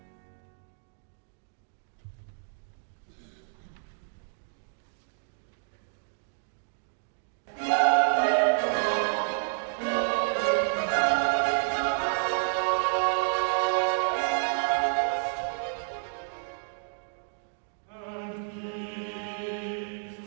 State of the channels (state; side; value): silent; left; digital silence